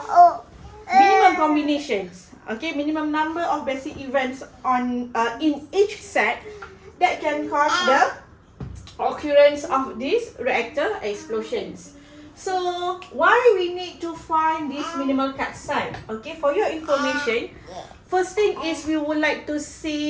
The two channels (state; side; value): identical; both; correlation 1.00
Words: minimum combinations, okay, minimum number of basic events on in each set that can cause the occurrence of these reactor explosions. So why we need to find this minimal cut set? Okay, for your information, first thing is we would like to